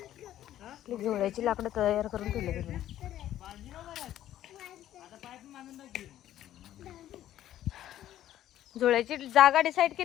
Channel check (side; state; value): right; quieter; 12.4 dB